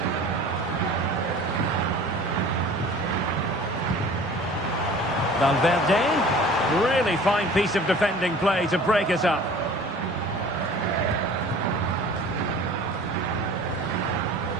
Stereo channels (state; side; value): normal; both; correlation 0.45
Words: Valverde, really fine piece of defending play to break us up.